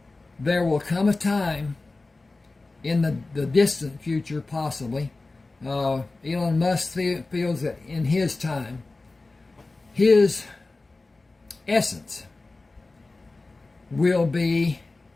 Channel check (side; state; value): right; quieter; 3.3 dB